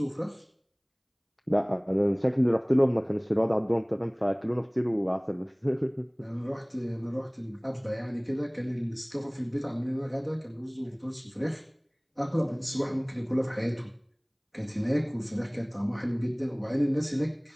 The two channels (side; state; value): both; identical; correlation 1.00